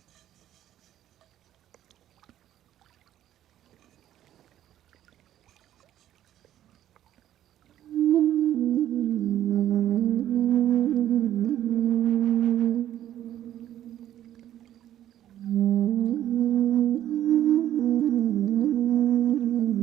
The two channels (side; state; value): left; quieter; 11.9 dB